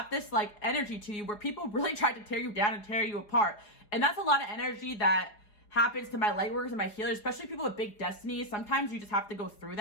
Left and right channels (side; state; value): right; late; 4.8 ms